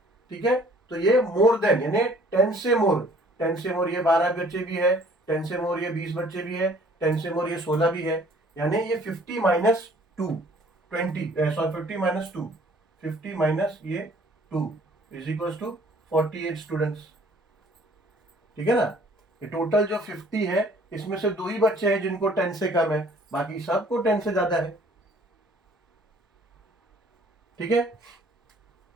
ठीक है, तो ये मोर देन यानी 10 से मोर, 10 से मोर ये 12 बच्चे भी है, 10 से मोर ये 20 बच्चे भी है, 10 से मोर ये 16 भी है, यानी ये 50 माइनस 2 20, सॉरी 50 माइनस 2, 50 माइनस ये 2 इज इक्वल टू 48 स्टूडेंट्स। ठीक है ना, ये टोटल जो 50 है इसमें से दो ही बच्चे हैं जिनको 10 से कम है, बाकी सबको 10 से ज्यादा है। ठीक है,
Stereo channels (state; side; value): normal; both; correlation 0.56